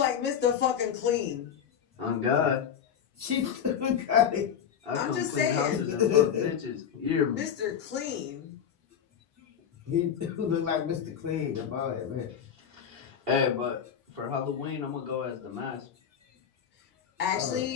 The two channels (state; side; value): quieter; right; 8.2 dB